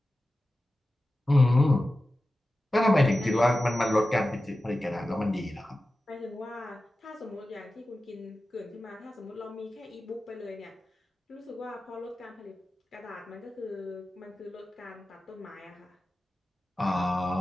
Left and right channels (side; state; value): both; normal; correlation 0.94